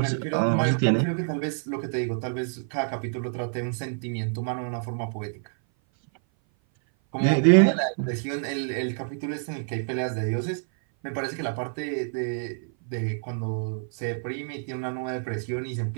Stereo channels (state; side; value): silent; left; 57 dB below the other